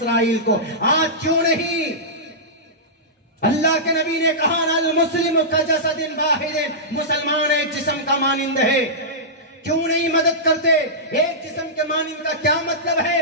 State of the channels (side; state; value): both; normal; correlation -0.15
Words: को। आज क्यों नहीं? अल्लाह के नबी ने कहा, अल मुस्लिम का जसदिन वाहिदिन, मुसलमान एक जिस्म का मानिंद है। क्यों नहीं मदद करते? एक जिस्म के मानिंद का क्या मतलब